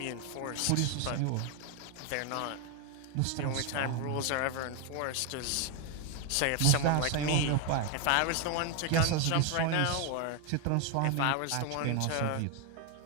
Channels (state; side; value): different; both; correlation 0.01